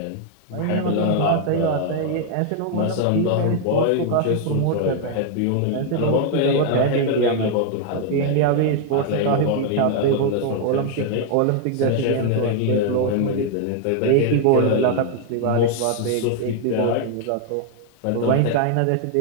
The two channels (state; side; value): different; both; correlation 0.00